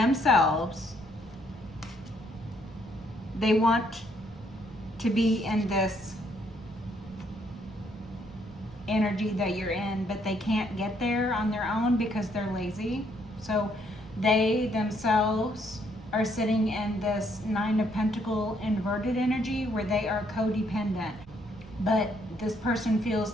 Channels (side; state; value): right; noise; rumble, 22 dB below the sound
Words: They want to be in this energy that you're in, but they can't get there on their own because they're lazy. So they themselves are sitting in this 9 of Pentacles inverted energy where they are codependent. But this person feels